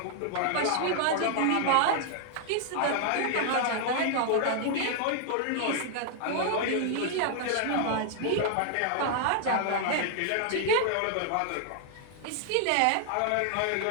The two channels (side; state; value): both; different; correlation 0.00